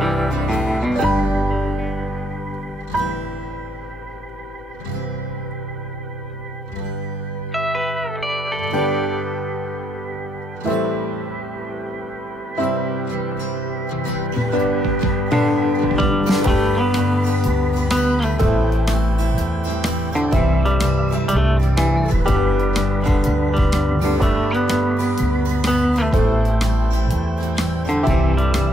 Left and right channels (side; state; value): both; normal; correlation 0.77